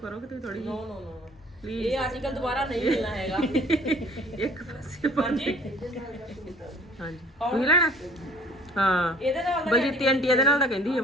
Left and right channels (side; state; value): both; normal; correlation 0.53